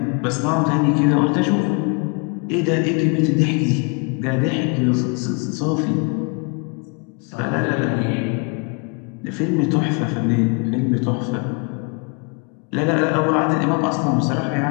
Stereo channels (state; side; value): quieter; right; 34.6 dB